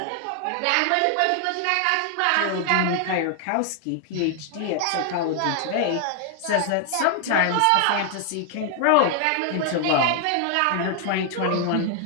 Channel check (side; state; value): both; different; correlation 0.00